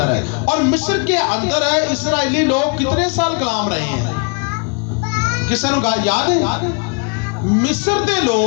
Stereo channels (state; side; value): quieter; right; 35.1 dB